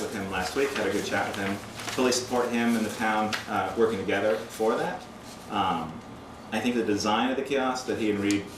him last week, had a good chat with him. Fully support him and the town working together for that. I think the design of the kiosk that he and Reed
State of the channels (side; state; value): both; identical; correlation 1.00